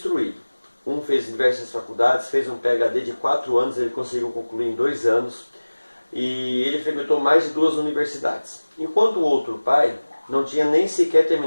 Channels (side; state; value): both; inverted; correlation -1.00